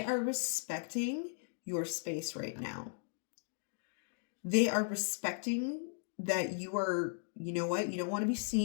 are respecting your space right now. They are respecting that you are, you know what? You don't want to be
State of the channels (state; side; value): silent; right; digital silence